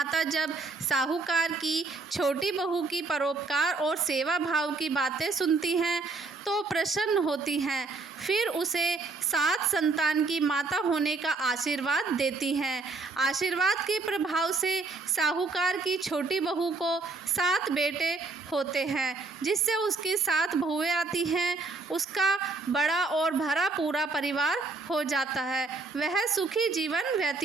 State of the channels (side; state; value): left; quieter; 3.9 dB